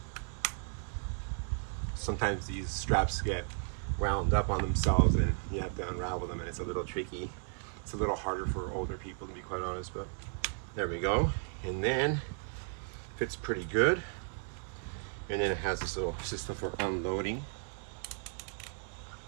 Sometimes these straps get wound up on themselves and you have to unravel them, and it's a little tricky. It's a little harder for older people, to be quite honest, but there we go. And then fits pretty good. And then it has this little system for unloading.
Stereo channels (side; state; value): left; silent; 55 dB below the other